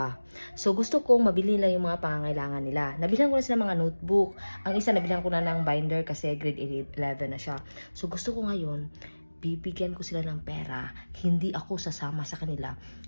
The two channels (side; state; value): both; inverted; correlation -1.00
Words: So gusto kong mabili nila yung mga pangangailangan nila. Nabilhan ko na sila mga notebook. Ang isa nabilhan ko na ng binder kasi grade 11 na siya. So gusto ko ngayon, bibigyan ko sila ng pera. Hindi ako sasama sa kanila.